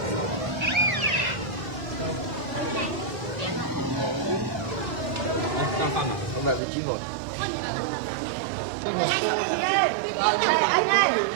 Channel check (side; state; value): left; drops out; at 6.6 s